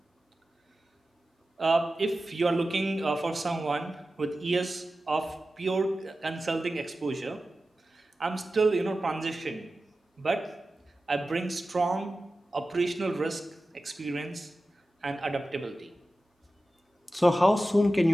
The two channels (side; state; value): both; normal; correlation 0.94